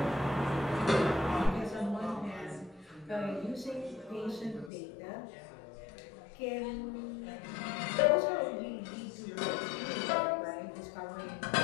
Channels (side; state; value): right; drops out; at 4.7 s